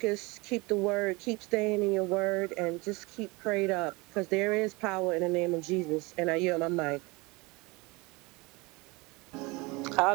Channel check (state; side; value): quieter; left; 25.1 dB